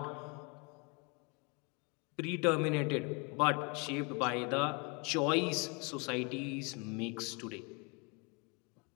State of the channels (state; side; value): quieter; right; 31.6 dB